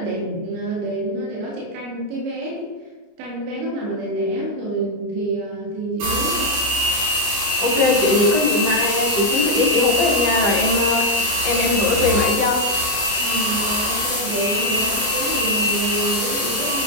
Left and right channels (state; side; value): late; left; 29 ms